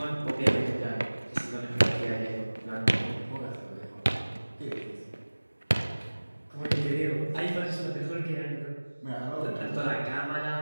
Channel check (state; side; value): inverted; both; correlation -1.00